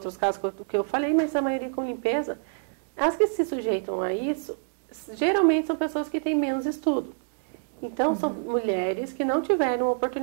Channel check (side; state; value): left; silent; digital silence